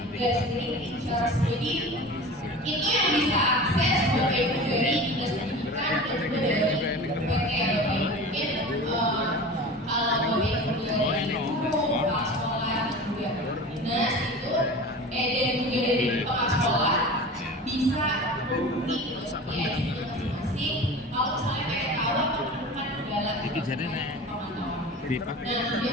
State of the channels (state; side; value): normal; both; correlation 0.35